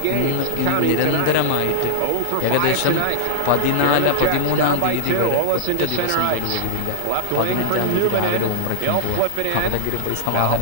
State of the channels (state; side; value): different; both; correlation 0.00